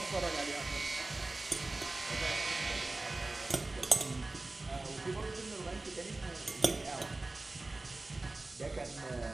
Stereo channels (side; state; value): left; quieter; 3.1 dB